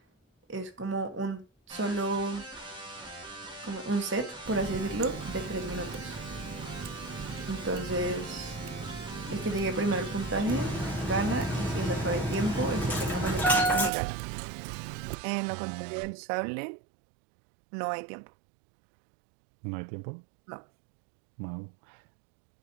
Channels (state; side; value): drops out; left; at 13.9 s